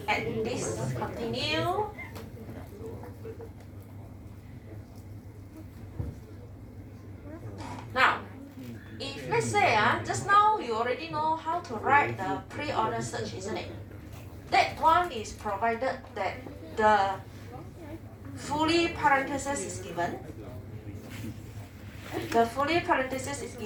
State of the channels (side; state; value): both; identical; correlation 1.00